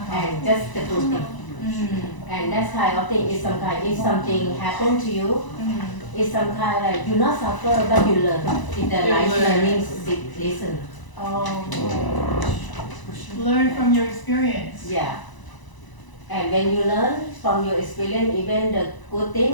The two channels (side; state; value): right; late; 1.0 ms